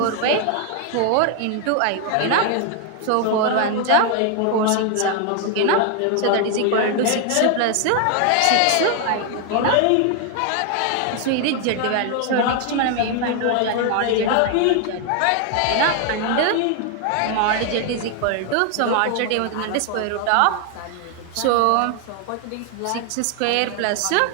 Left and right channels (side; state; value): both; different; correlation 0.00